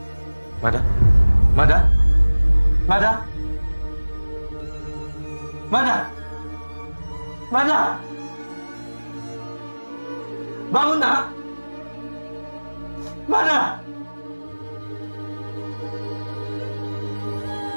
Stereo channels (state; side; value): inverted; both; correlation -1.00